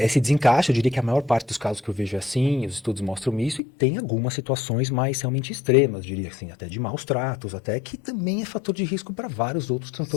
desencaixe, eu diria que a maior parte dos casos que eu vejo é assim, os estudos mostram isso, e tem algumas situações mais realmente extremas, diria assim, até de maus tratos, até que também é fator de risco para vários outros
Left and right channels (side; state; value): right; drops out; at 3.6 s